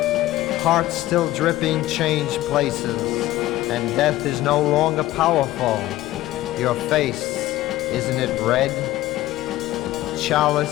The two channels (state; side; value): quieter; right; 15.9 dB